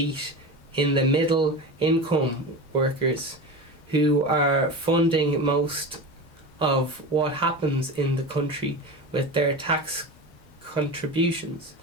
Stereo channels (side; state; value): both; normal; correlation 0.27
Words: in the middle income workers who are funding most of what happens in the country with their tax contributions,